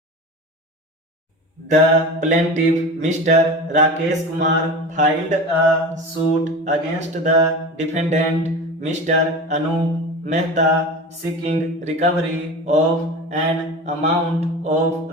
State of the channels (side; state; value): both; normal; correlation 0.31